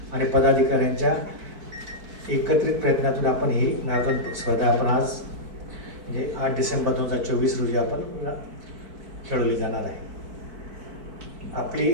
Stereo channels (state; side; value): late; left; 4.5 ms